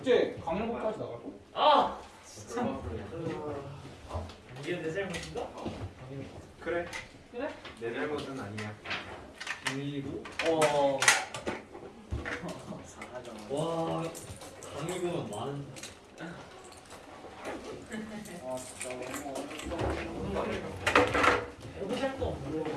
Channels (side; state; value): both; identical; correlation 1.00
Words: 강릉까지 나갈 거? 이게 내 잘못인가? 그래. 그래? 내 잘못은 아니야. 그리고 사하죠. 와 강의금은 많은. 진짜 너무 해보실 거 없는 거.